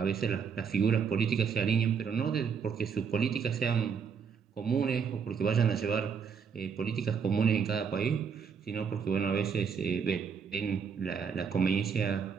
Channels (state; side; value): quieter; left; 6.5 dB